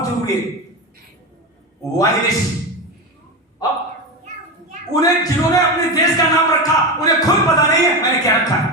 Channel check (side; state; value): both; normal; correlation 0.18